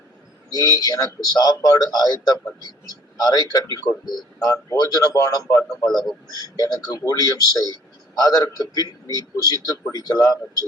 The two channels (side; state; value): both; normal; correlation 0.54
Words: நீ எனக்கு சாப்பாடு ஆயத்தம் பண்ணி அறை கட்டி கொண்டு நான் போஜனபானம் பண்ணும் அளவும் எனக்கு ஊழியம் செய், அதற்கு பின் நீ புசித்து குடிக்கலாம்